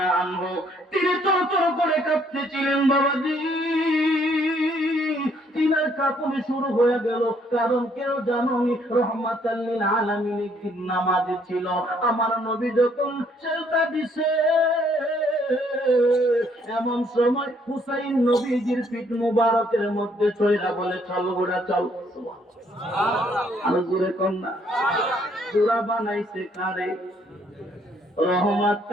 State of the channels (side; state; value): both; normal; correlation 0.66